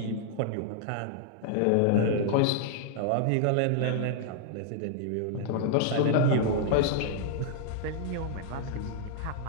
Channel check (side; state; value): both; different; correlation 0.00